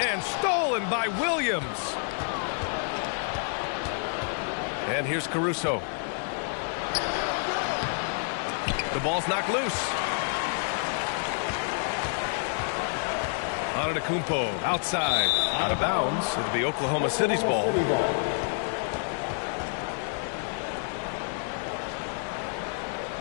stolen by Williams. And here's Caruso. The ball's knocked loose. Antetokounmpo outside, out of bounds. It'll be Oklahoma City's ball.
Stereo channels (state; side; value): silent; right; 59 dB below the other